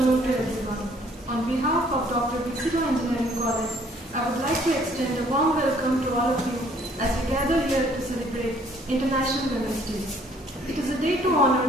to everyone. On behalf of Dr. Bixilo Engineering College, I would like to extend a warm welcome to all of you as we gather here to celebrate International Women's Day. It is a day to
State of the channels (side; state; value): both; normal; correlation 0.60